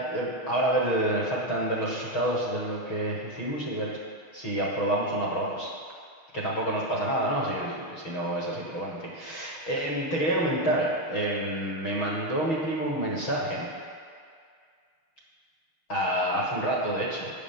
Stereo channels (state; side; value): late; right; 6.5 ms